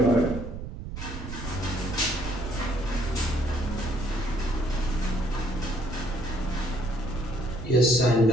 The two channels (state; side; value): noise; right; rumble, 8 dB below the sound